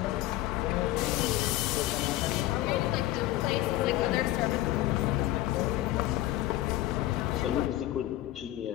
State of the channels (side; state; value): right; quieter; 15.4 dB